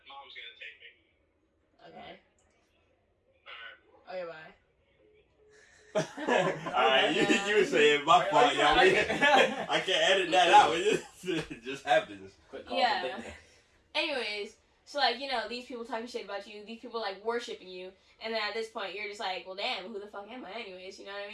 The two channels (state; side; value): identical; both; correlation 1.00